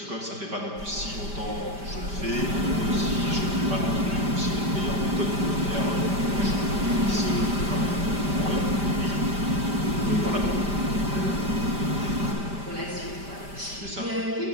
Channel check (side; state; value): left; late; 5.1 ms